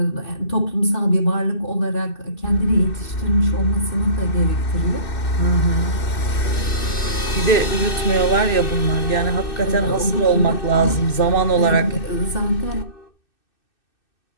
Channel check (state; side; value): late; right; 2.6 ms